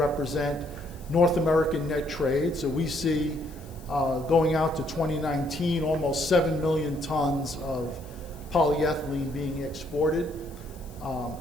North American net trade. So we see going out to 2019, almost 7 million tons of polyethylene being exported.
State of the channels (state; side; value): noise; left; hiss, 24 dB below the sound